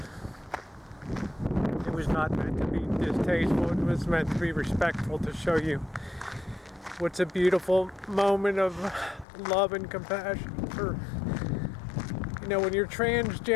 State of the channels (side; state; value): right; drops out; at 9.2 s